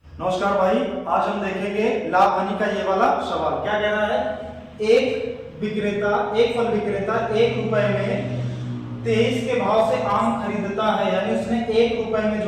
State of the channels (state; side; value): identical; both; correlation 1.00